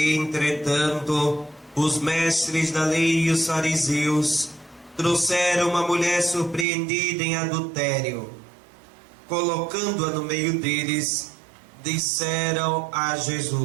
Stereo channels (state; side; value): drops out; left; at 6.7 s